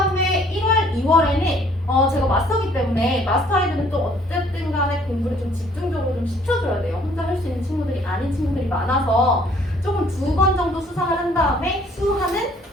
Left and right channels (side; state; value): both; normal; correlation 0.60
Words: 1월, 2월에는 제가 마스터기 때문에 마스터 아이들은 또 어쨌든 간에 공부를 좀 집중적으로 좀 시켜줘야 돼요. 혼자 할 수 있는 친구들이 아닌 친구들이 많아서 조금 2번 정도 수상을 한 다음에 수하는